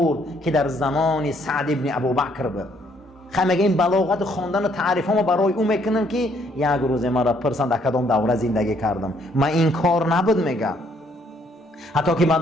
که در زمان سعد ابن ابوبکر بود. مگه این بلاغت خواندن و تعریف ها ما برای او میکنم که یک روز مرا پرسن در کدام دوره زندگی کردم. من این کار نبود میگم. حتی که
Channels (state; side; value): normal; both; correlation 0.68